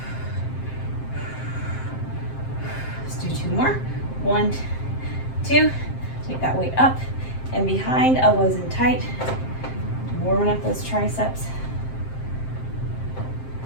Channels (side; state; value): right; late; 7.6 ms